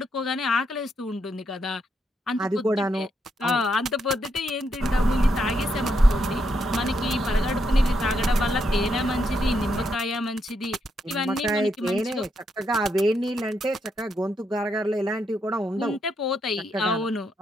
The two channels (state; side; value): normal; both; correlation 0.79